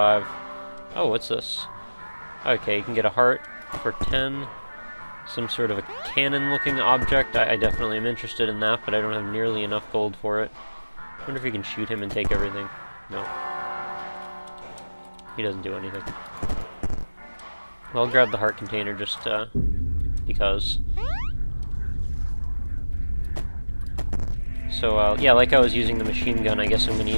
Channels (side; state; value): both; inverted; correlation -1.00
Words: Oh, what's this? Okay, you can get a heart for 10. Some sort of a cannon-looking object. I definitely am interested in that, but I don't have nearly enough gold for it. I wonder if we can shoot him and take everything. No. He doesn't do anything. Well, I'll grab the heart container just because. So, yeah, like I was using the machine gun, I guess I'm going to